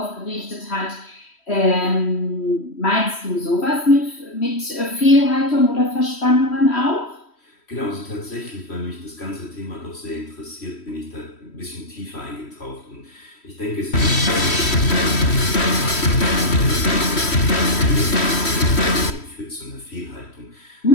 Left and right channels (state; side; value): late; right; 3.1 ms